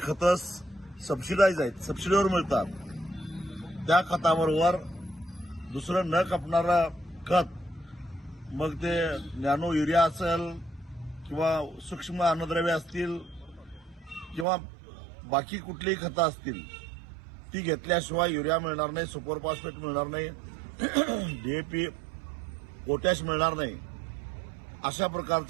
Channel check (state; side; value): drops out; left; at 14.5 s